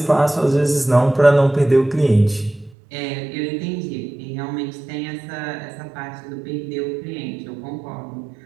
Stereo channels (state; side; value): drops out; left; at 2.8 s